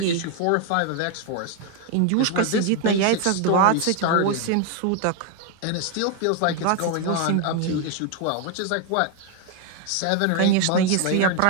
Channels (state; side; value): different; both; correlation 0.01